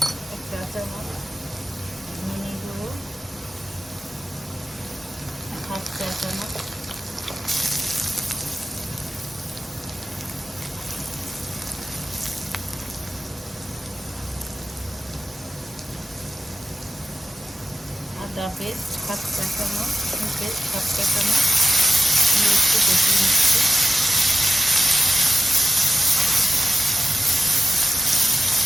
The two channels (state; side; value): normal; both; correlation 0.95